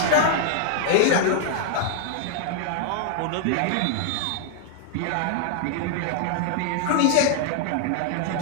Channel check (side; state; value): both; different; correlation 0.00